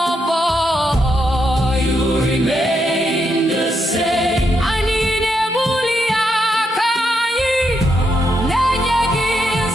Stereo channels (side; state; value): both; normal; correlation 0.80